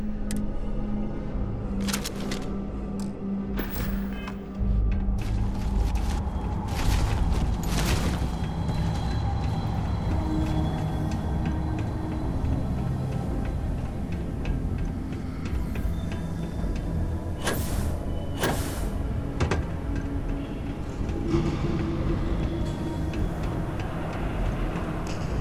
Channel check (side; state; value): both; identical; correlation 1.00